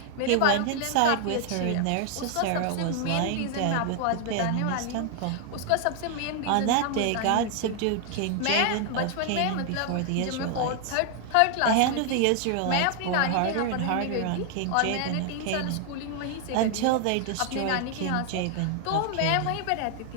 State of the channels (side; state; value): both; different; correlation 0.00